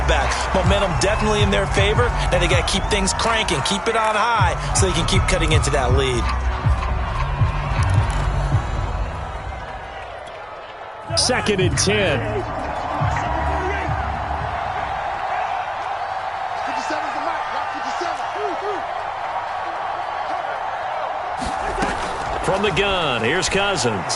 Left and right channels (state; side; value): identical; both; correlation 1.00